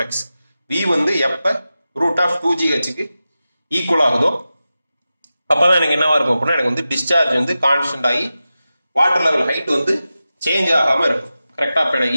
V வந்து எப்ப ரூட் ஆஃப் 2GHக்கு ஈக்குவல் ஆகுதோ அப்பதான் எனக்கு என்னவா இருக்கும் அப்படின்னா எனக்கு வந்து டிஸ்சார்ஜ் வந்து கான்ஸ்டன்ட் ஆகி வாட்டர் லெவல் ஹைட் வந்து சேஞ்ச் ஆகாம இருக்கும் கரெக்டா. இப்போ எனக்கு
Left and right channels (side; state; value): both; inverted; correlation -0.93